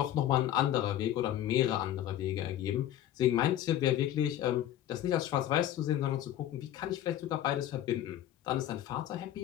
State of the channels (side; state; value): right; quieter; 12.0 dB